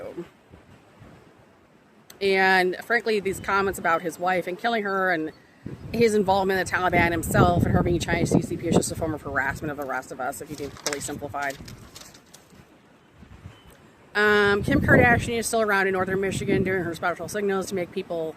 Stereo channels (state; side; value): identical; both; correlation 1.00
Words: And frankly, these comments about his wife and killing her and his involvement in the Taliban himself and her being Chinese CCP is just a form of harassment of the rest of us, if you do fully simplified. Kim Kardashian is still around in northern Michigan doing her special signals to make people